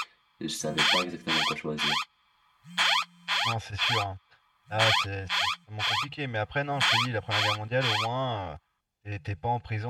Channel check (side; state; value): both; identical; correlation 1.00